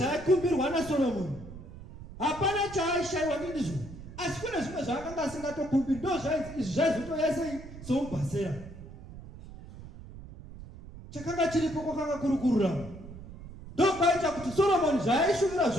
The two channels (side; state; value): right; noise; rumble, 15 dB below the sound